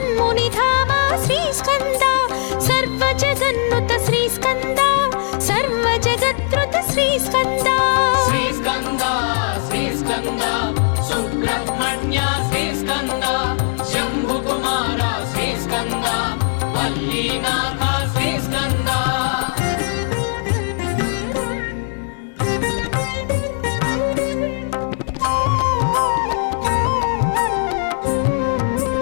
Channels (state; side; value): silent; right; digital silence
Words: శ్రీస్కంద సర్వ జగన్నుత శ్రీస్కంద సర్వ జగత్రుత శ్రీస్కంద శ్రీస్కంద శ్రీస్కంద సుబ్రహ్మణ్య శ్రీస్కంద శంభుకుమార శ్రీస్కంద వల్లీనాథ శ్రీస్కంద